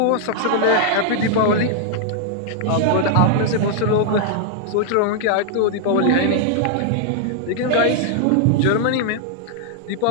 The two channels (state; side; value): different; both; correlation 0.00